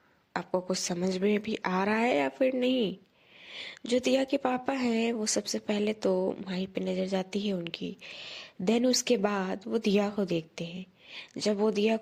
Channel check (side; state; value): both; identical; correlation 1.00